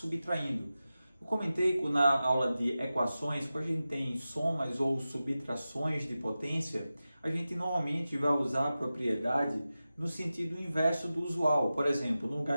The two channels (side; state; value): both; inverted; correlation -0.94